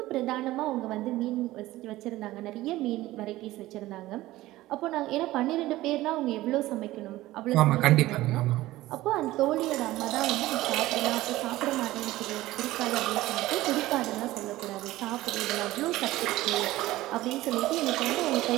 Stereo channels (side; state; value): left; quieter; 17.0 dB